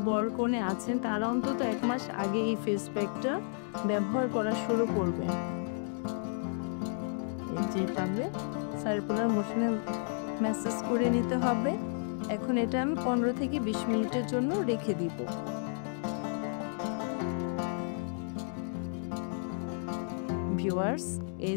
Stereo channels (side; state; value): right; silent; 56 dB below the other